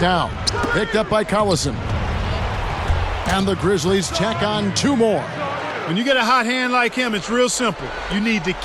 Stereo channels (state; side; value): identical; both; correlation 1.00